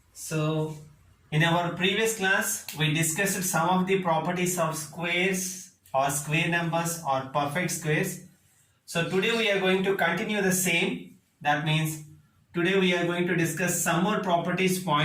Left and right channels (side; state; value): both; identical; correlation 1.00